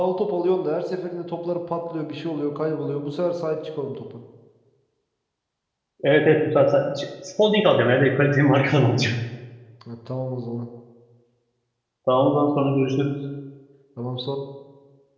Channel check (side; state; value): both; identical; correlation 1.00